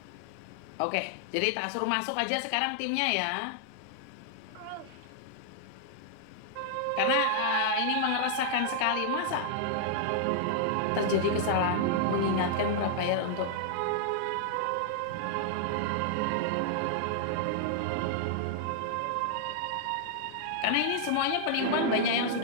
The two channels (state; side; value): different; both; correlation -0.01